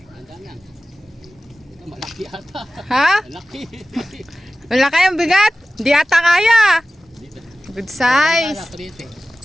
Malaki ata. Ha? Malaki. Malaki ang bigat. Di ata kaya. Good size.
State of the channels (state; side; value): normal; both; correlation 0.96